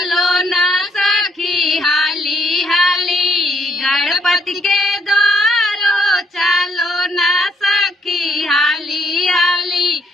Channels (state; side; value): normal; both; correlation 0.68